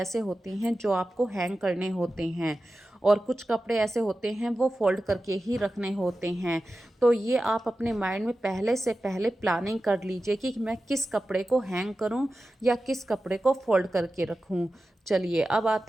होते हैं जो आपको हैंग करने होते हैं, और कुछ कपड़े ऐसे होते हैं वो फोल्ड करके ही रखने होते हैं। तो ये आप अपने माइंड में पहले से पहले प्लानिंग कर लीजिए कि मैं किस कपड़े को हैंग करूं या किस कपड़े को फोल्ड करके रखूं। चलिए, अब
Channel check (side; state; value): both; normal; correlation 0.93